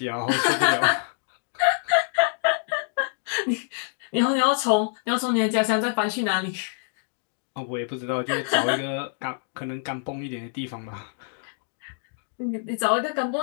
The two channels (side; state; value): right; silent; 61 dB below the other